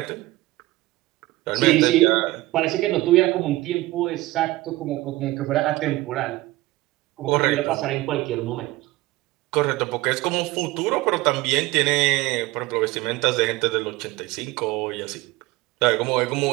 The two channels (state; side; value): quieter; left; 19.1 dB